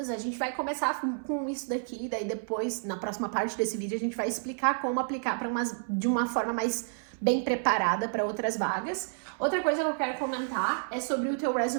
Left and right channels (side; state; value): left; silent; 58 dB below the other